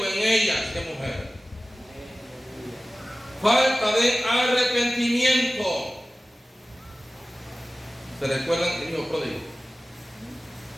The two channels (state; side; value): normal; both; correlation 0.96